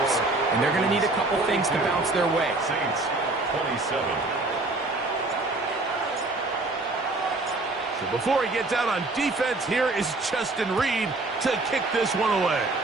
and they're going to need a couple things to bounce their way. Saints 27. So before he gets out on defense, here is Justin Reed to kick this one away.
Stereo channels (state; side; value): quieter; left; 3.1 dB